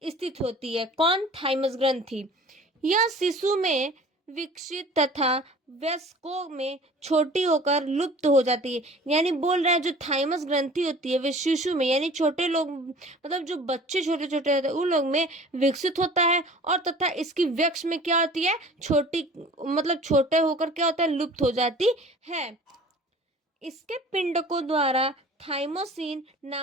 स्थित होती है। कौन, थाइमस ग्रंथि। यह शिशु में विकसित तथा वयस्कों में छोटी होकर लुप्त हो जाती है। यानी बोल रहे हैं जो थाइमस ग्रंथि होती है वे शिशु में, यानी छोटे लोग, मतलब जो बच्चे छोटे छोटे होते हैं उन लोग में विकसित होता है और तथा इसकी वयस्क में क्या होती है, छोटी, मतलब छोटे होकर क्या होता है, लुप्त हो जाती है। इसके पिंडकों द्वारा थाइमोसिन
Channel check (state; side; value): normal; both; correlation 0.45